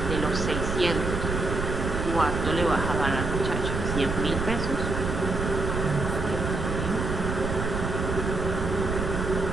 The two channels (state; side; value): noise; right; rumble, 2 dB below the sound